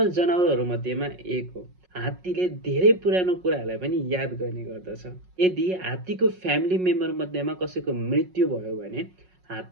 जनावरहरु मध्येमा एक हो। हात्तीले धेरै पुरानो कुराहरुलाई पनि याद गर्ने गर्दछ। यदि हात्तीको फ्यामिली मेम्बर मध्येमा कसैको मृत्यु भयो भने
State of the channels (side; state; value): left; late; 5.5 ms